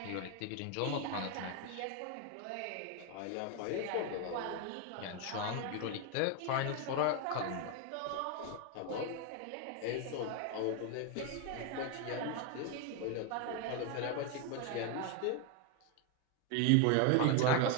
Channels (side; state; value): both; different; correlation 0.01